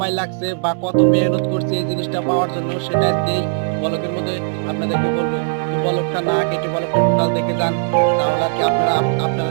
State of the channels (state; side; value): silent; left; digital silence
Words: লাগছে বা কত মেহনত করছি এই জিনিসটা পাওয়ার জন্য, সেটা আজকে এই ব্লগের মধ্যে আপনাদেরকে বলবো। তো ব্লগটা না কেটে ব্লগটা টোটাল দেখে যান, তাহলে আর কি আপনারা